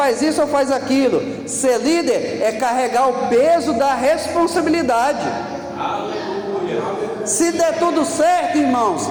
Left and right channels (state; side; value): identical; both; correlation 1.00